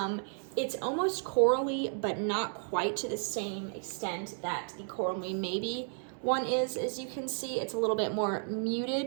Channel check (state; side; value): silent; left; 56 dB below the other